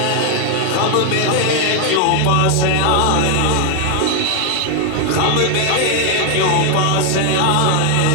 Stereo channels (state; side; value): different; both; correlation 0.01